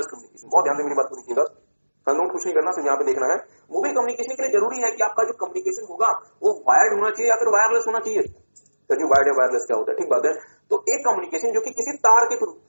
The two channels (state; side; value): inverted; both; correlation -1.00